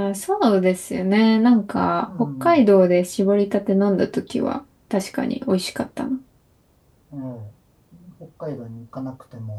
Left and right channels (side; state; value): both; identical; correlation 1.00